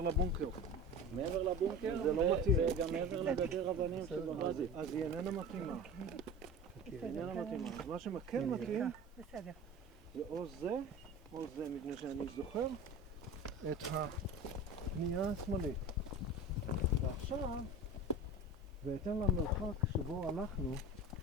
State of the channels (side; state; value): both; normal; correlation 0.34